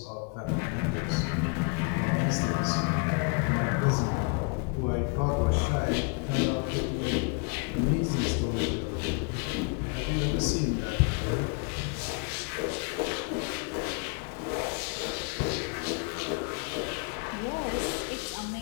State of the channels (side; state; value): right; quieter; 32.2 dB